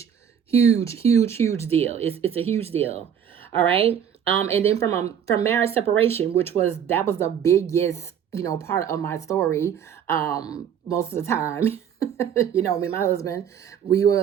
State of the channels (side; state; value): left; quieter; 8.4 dB